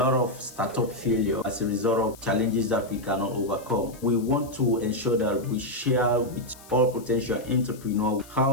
of startup failure as a result of challenges that we cannot overcome. We want to ensure that we share with all potential entrepreneurs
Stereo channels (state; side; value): noise; left; hiss, 21 dB below the sound